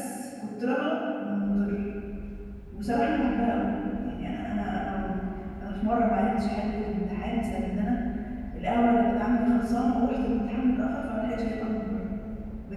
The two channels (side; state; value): both; identical; correlation 1.00